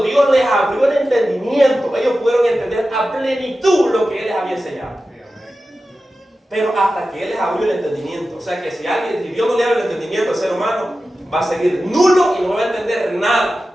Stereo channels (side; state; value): both; normal; correlation 0.93